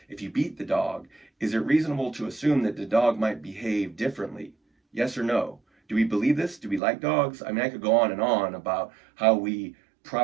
if you beat the dog, is it reasonable to assume that the dog might behave differently? Yes or no? Do we believe this? Do we like dogs? I mean, I could go on and on about how we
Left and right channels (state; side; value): drops out; left; at 6.8 s